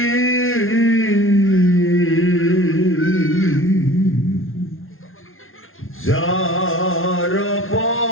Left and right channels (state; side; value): late; right; 0.60 ms